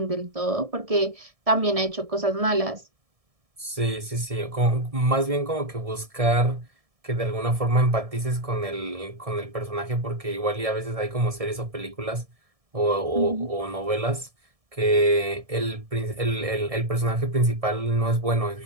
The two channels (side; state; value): left; late; 1.7 ms